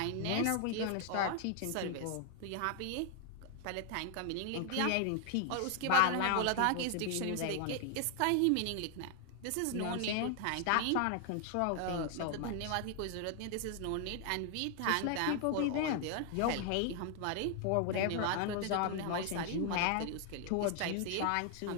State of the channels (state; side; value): different; both; correlation 0.00